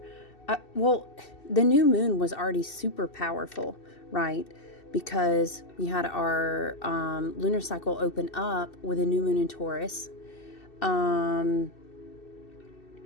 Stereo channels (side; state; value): right; late; 2.7 ms